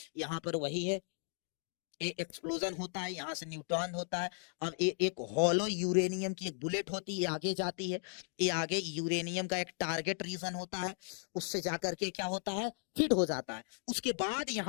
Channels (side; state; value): right; silent; 54 dB below the other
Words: यहाँ पर वही है, एक एक्सप्लोजन होता है, यहाँ से न्यूट्रॉन होता है। अब एक हॉलो यूरेनियम की एक बुलेट होती है, आगे जाती है, ये आगे यूरेनियम का एक टारगेट रीजन होता है, उससे जाकर के क्या होता है, हिट हो जाता है। उसके बाद